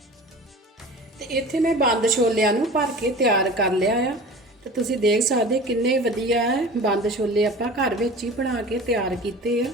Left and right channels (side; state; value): both; normal; correlation 0.38